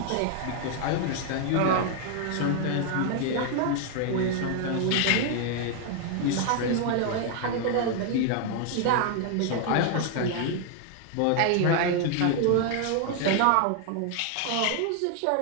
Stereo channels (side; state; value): both; different; correlation 0.00